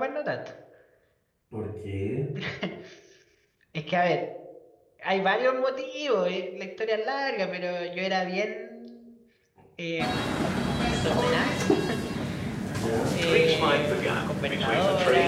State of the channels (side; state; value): both; identical; correlation 1.00